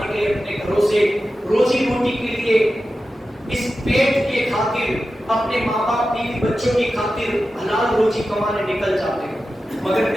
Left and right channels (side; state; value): both; normal; correlation 0.93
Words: کے لیے اپنے گھروں سے روزی روٹی کے لیے اس پیٹ کے خاطر اپنے ماں باپ بیوی بچوں کی خاطر حلال روزی کمانے نکل جاتے ہیں. مگر